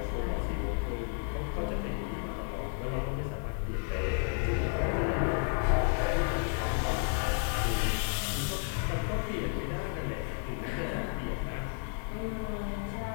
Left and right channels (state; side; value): quieter; right; 39.4 dB